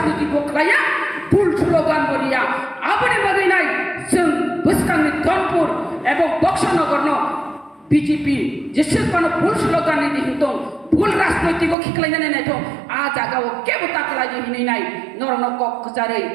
বকলাইয়া ভুল স্লোগান বলিয়া আপনি বাগৈ নাই जों बुसकांनि दनपुर एवं बक्सनगर বিজেপি যেসেবানো ভুল স্লোগান দিহিতং ভুল রাজনৈতিক খিখলাইনাनै নাইথं आ जागाव केबो ताकलाय हिनै नाय नरन कक जारै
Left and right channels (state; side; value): drops out; left; at 11.8 s